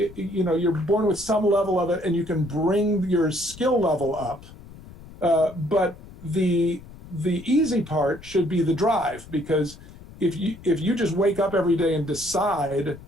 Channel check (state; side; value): noise; left; rumble, 18 dB below the sound